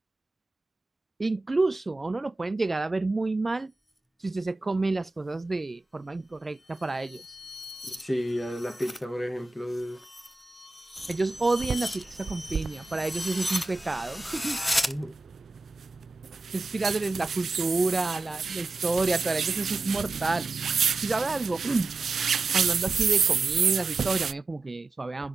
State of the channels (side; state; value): left; quieter; 3.4 dB